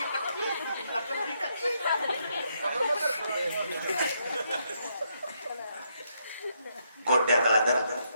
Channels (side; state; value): both; inverted; correlation -0.77